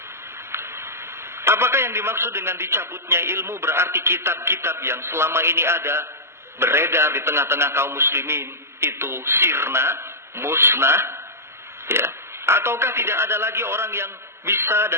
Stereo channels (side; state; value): left; late; 0.13 ms